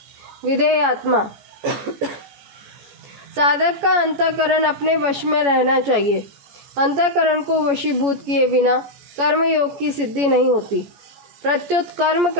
विधेयात्मा, साधक का अंतःकरण अपने वश में रहना चाहिए। अंतःकरण को वशीभूत किए बिना कर्मयोग की सिद्धि नहीं होती। प्रत्युत कर्म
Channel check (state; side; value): late; left; 14 ms